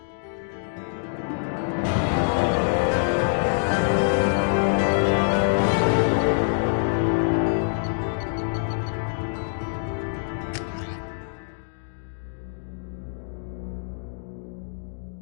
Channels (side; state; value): right; silent; digital silence